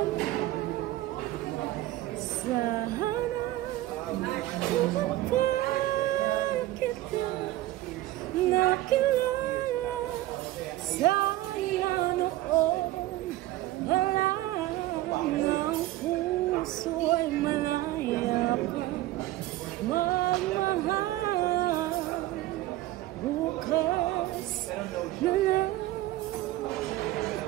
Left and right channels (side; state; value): left; quieter; 16.0 dB